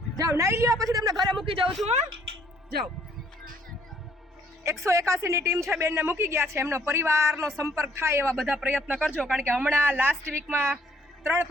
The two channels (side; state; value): both; normal; correlation 0.65